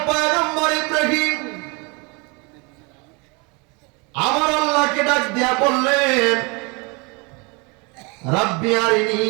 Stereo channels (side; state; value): left; quieter; 29.7 dB